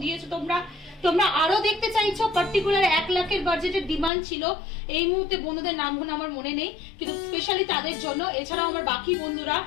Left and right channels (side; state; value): right; drops out; at 4.1 s